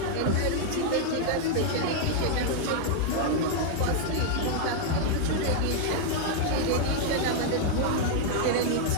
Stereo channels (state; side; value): different; both; correlation 0.00